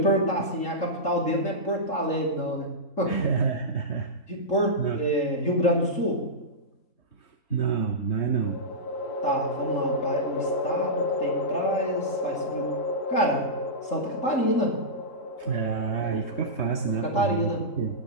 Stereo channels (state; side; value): late; right; 3.7 ms